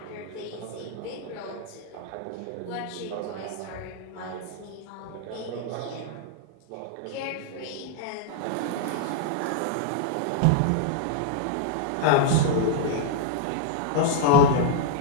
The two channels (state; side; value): different; both; correlation -0.01